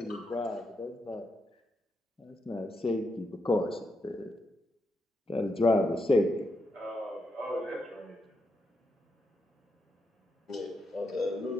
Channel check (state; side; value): normal; both; correlation 0.83